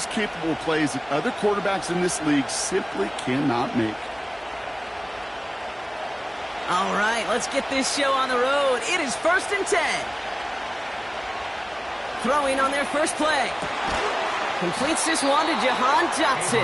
capable of plays that other quarterbacks in this league simply cannot make. All right, let's get this show on the road. It is 1st and 10. Throwing on their first play. Completes this one to Jahan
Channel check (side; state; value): both; identical; correlation 1.00